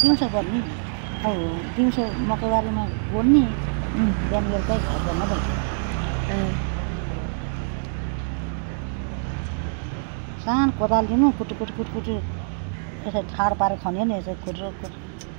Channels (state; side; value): silent; left; digital silence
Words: दिउँसो गर्ने अब दिउँसो मकैबारीमा गोड्ने बिहान बेलुकै घर धन्दा सानो कोदाल लिनु कुटु यसरी ठाड पारेर खन्यो नि यसरी खुट्रो